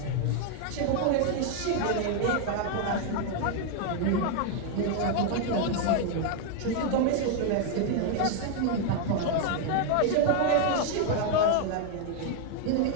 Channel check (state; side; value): different; both; correlation 0.00